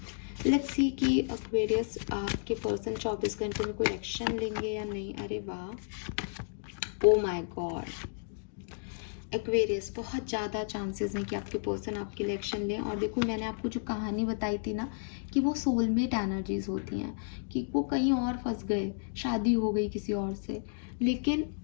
लेट्स सी कि एक्वेरियस आपके पर्सन 24 घंटे में कोई एक्शन लेंगे या नहीं। अरे वाह, ओ माय गॉड, एक्वेरियस बहुत ज़्यादा चांसेस हैं कि आपके पर्सन आपके लिए एक्शन लें। और देखो, मैंने आपको जो कहानी बताई थी ना कि वो सोलमेट एनर्जीज होती हैं, कि वो कहीं और फंस गए, शादी हो गई किसी और से, लेकिन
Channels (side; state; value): right; silent; digital silence